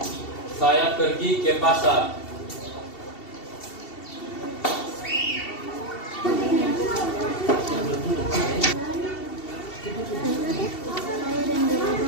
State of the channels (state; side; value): late; right; 2.7 ms